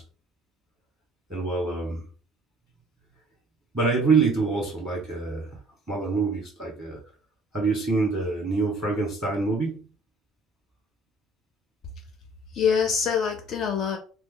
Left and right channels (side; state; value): both; normal; correlation 0.54